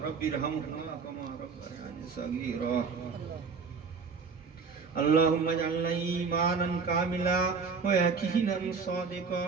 رب ارحمهما كما ربياني صغيرا اللهم اجعلنا إيمانا كاملا ويقينا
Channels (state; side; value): quieter; left; 5.3 dB